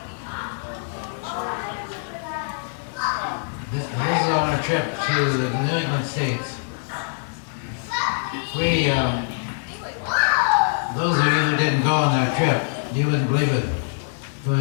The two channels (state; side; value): silent; right; 63 dB below the other